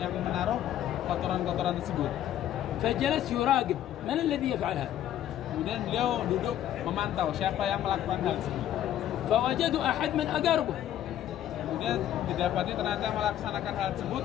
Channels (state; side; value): quieter; right; 11.6 dB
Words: yang menaruh kotoran-kotoran tersebut. فجلس يراقب من الذي يفعل هذا. Kemudian beliau duduk memantau siapa yang melakukan hal tersebut. فوجدوا أحد من أقاربه. Kemudian didapati ternyata melaksanakan hal tersebut